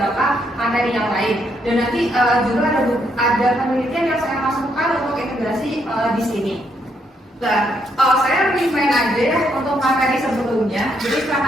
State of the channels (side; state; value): both; normal; correlation 0.75